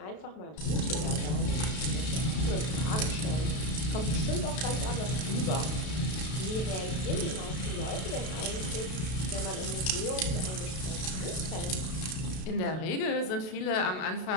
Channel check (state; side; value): late; right; 32 ms